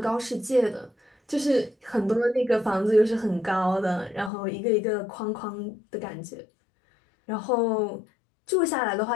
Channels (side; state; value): right; drops out; at 4.3 s